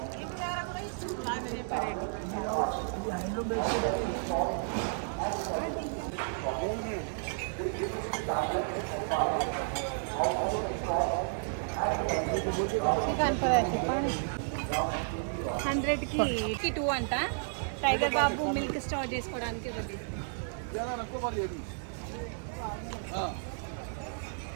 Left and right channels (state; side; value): silent; left; 56 dB below the other